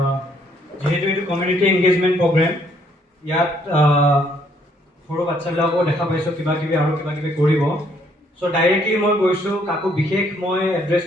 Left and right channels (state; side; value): normal; both; correlation 0.67